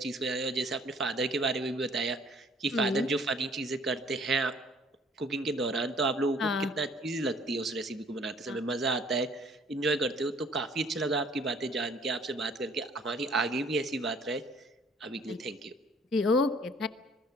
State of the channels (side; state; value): both; normal; correlation 0.57